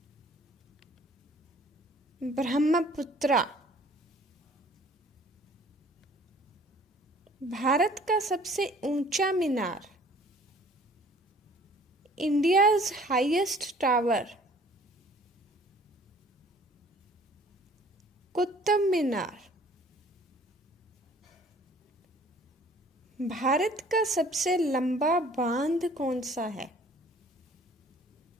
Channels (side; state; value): both; normal; correlation 0.53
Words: Brahmaputra. Bharat का सबसे ऊंचा मीनार? India's highest tower, Qutub Minar. Bharat का सबसे लंबा बांध कौन सा है?